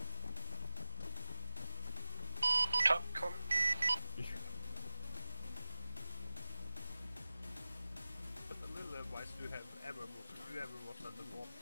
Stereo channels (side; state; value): both; inverted; correlation -0.96